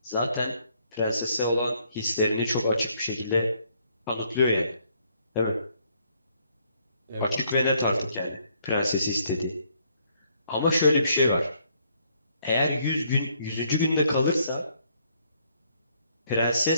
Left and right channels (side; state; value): both; inverted; correlation -0.69